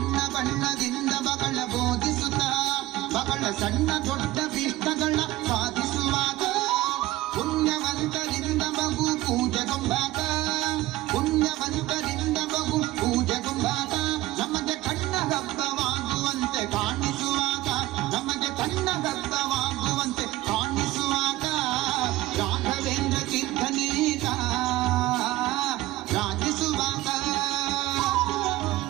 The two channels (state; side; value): quieter; left; 16.9 dB